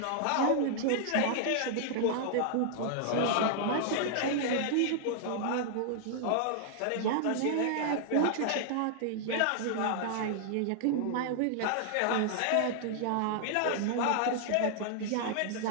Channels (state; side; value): different; both; correlation -0.01